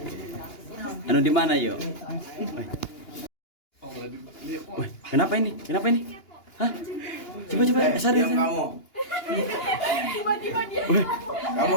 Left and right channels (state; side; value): late; right; 2.8 ms